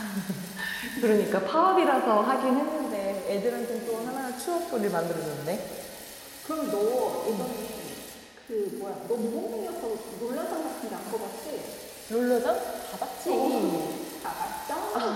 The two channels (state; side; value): identical; both; correlation 1.00